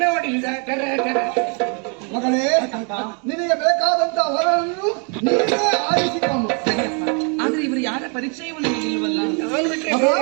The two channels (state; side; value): quieter; left; 37.0 dB